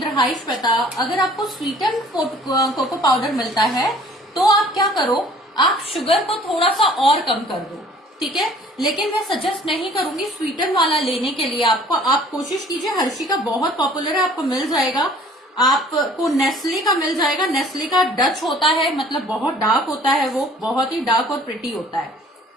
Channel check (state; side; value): normal; both; correlation 0.53